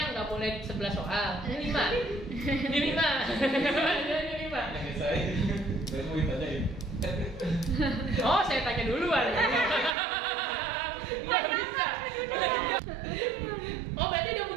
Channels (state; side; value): drops out; left; at 10.0 s